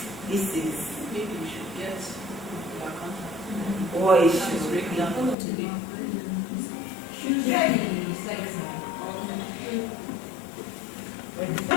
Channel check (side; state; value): right; drops out; at 5.4 s